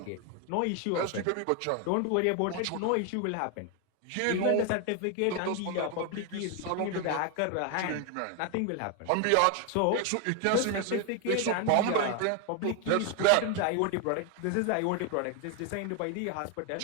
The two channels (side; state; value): both; different; correlation 0.01